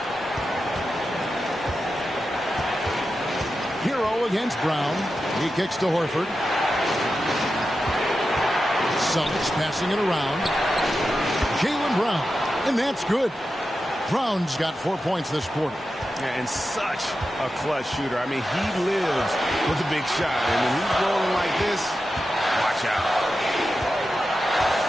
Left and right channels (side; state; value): both; normal; correlation 0.91